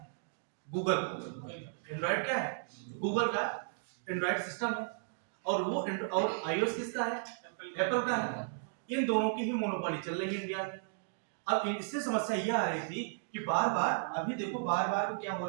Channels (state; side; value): silent; left; digital silence